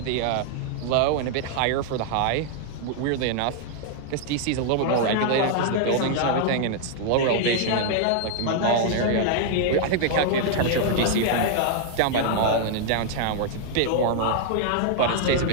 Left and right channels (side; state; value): both; different; correlation 0.00